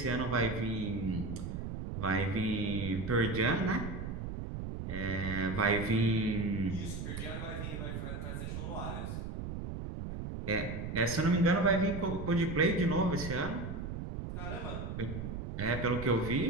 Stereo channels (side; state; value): right; noise; rumble, 6 dB below the sound